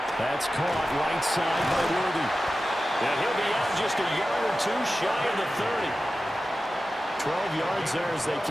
That's caught right side by Worthy. And he'll be out just a yard or 2 shy of the 30. 12 yards there as they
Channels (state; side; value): normal; both; correlation 0.94